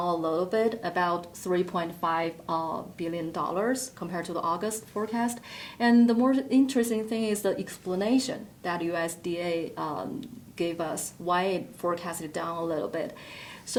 a little bit, about $3.5 billion compared to the August forecast. And the more interesting thing is the explanation that USDA gave us why it forecasted down a little bit.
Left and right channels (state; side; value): identical; both; correlation 1.00